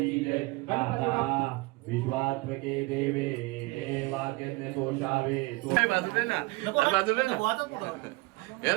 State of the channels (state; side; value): quieter; left; 23.3 dB